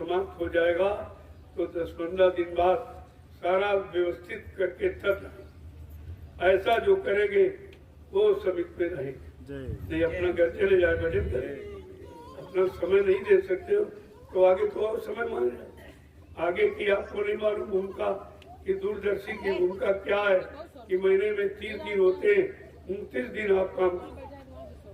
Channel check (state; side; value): identical; both; correlation 1.00